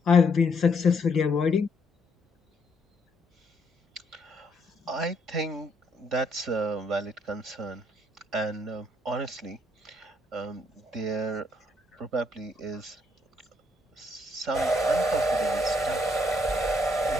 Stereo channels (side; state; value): both; normal; correlation 0.72